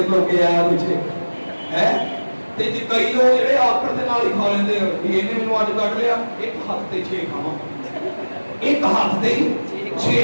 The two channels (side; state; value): both; inverted; correlation -1.00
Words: لو گیا مجھے ہے. کئی لوگ جڑے آکڑ کے نال ہی کھا لیندے یہ نے مینوں اج کٹ لیا ایک ہاتھ تے 6 کھاواں ایک ہاتھ تے